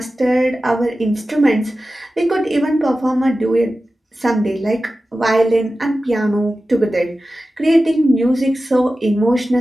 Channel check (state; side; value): normal; both; correlation 0.94